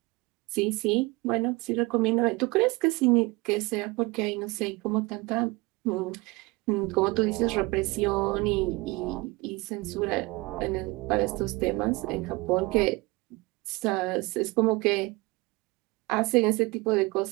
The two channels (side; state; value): left; quieter; 23.8 dB